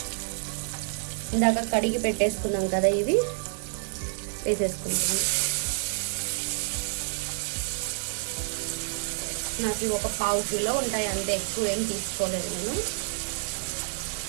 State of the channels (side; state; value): left; silent; digital silence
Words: ఇందాక కడిగి పెట్టేసుకున్నాం కదా, ఇవి వేసేసుకుంటాం. నాకు ఒక 1/4 కిలో ఉంటాయి అంతే, ఎక్కువ ఏం తీసుకోలేదు నేను.